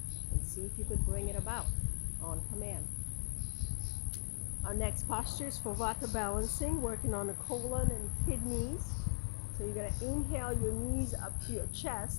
and see if you could bring it about on command. Our next posture is for Vata balancing, working on the colon and kidneys. So you're going to inhale your knees up to your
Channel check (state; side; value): silent; right; 52 dB below the other